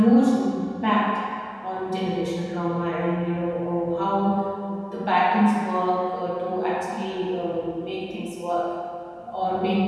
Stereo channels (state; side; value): identical; both; correlation 1.00